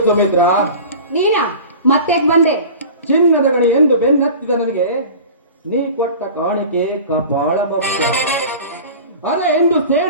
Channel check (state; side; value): inverted; both; correlation -0.38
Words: ಸುಮಿತ್ರ? ನೀನಾ ಮತ್ತೆ ಬಂದೆ? ಚಿನ್ನದ ಗಣಿ ಎಂದು ಬೆನ್ನತ್ತಿದ ನನಗೆ ನೀ ಕೊಟ್ಟ ಕಾಣಿಕೆ ಕಪಾಳ ಭಕ್ತ. ಅದೇ ಎಂದು